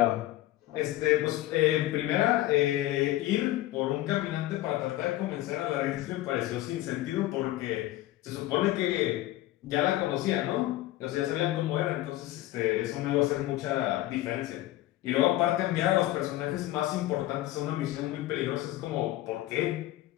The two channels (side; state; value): right; quieter; 15.9 dB